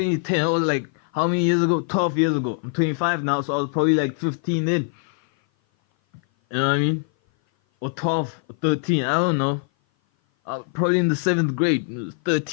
It was like, how many years ago? 12 years ago. I'm 25 now, so I was probably like 15 in. You know what I mean? Or 12, or 13, I don't know. Probably in the 7th grade,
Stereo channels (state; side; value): silent; right; 57 dB below the other